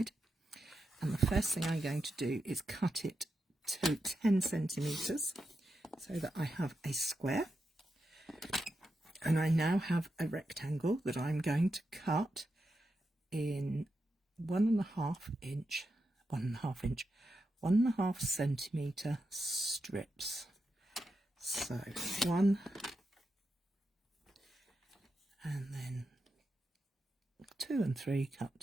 And the first thing I'm going to do is cut it to 10 centimetres so that I have a square. And I now have a rectangle that I'm going to cut in 1.5 centimetre strips. So 1 and then 2 and 3 cut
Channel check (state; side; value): normal; both; correlation 0.87